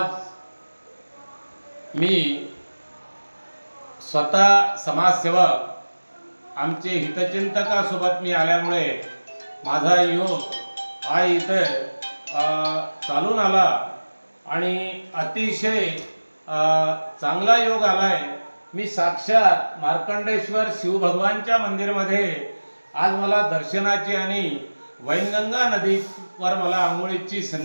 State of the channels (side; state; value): both; inverted; correlation -1.00